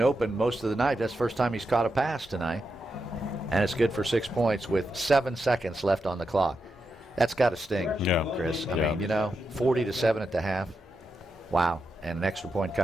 most of the night. That's the first time he's caught a pass tonight. And it's good for 6 points with 7 seconds left on the clock. That's got to sting, Chris. I mean, 40-7 at the half. Wow. And an extra point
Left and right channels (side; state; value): both; normal; correlation 0.86